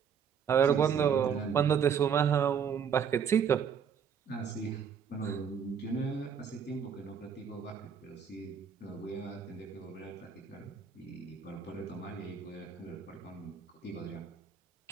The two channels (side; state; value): left; quieter; 7.3 dB